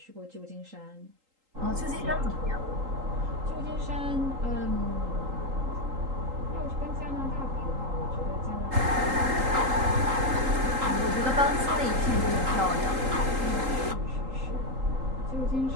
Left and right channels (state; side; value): late; left; 3.8 ms